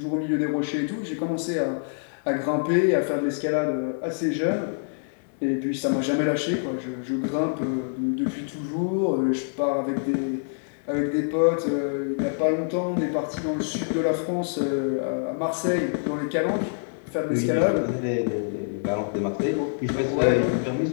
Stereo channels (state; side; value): silent; right; digital silence